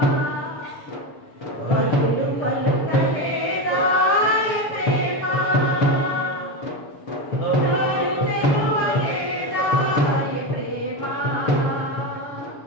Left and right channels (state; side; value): late; right; 7.3 ms